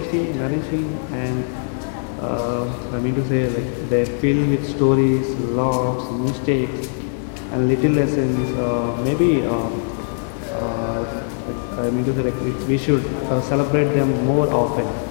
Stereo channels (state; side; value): silent; right; digital silence